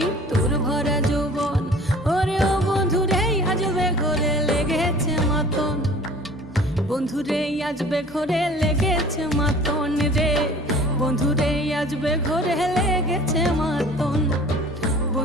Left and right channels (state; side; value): normal; both; correlation 0.47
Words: তোর ভরা যৌবন ওরে ও বন্ধুরে আজবে ঘরে লেগেছে মাতন বন্ধুরে আজবে ঘরে লেগেছে মাতন রে বন্ধুরে আজবে ঘরে লেগেছে মাতন